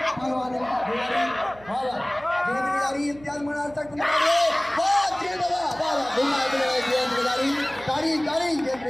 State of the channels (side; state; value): right; noise; hum, 23 dB below the sound